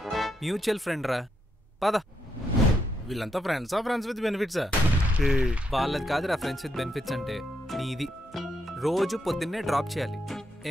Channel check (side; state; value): both; normal; correlation 0.80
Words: Mutual friend రా. పద. వీళ్ళంతా ఫ్రెండ్సా, ఫ్రెండ్స్ విత్ బెనిఫిట్సా? వాళ్ళది కాదురా ఫ్రెండ్స్ విత్ బెనిఫిట్స్ అంటే. నీది రోజు పొద్దున్నే డ్రాప్ చేయాలి.